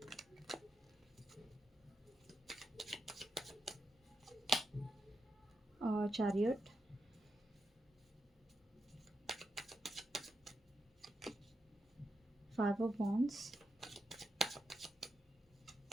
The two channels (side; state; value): both; normal; correlation 0.86